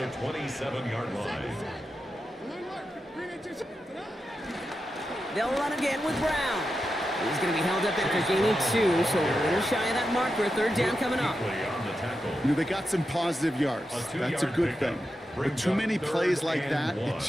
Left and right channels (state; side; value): normal; both; correlation 0.89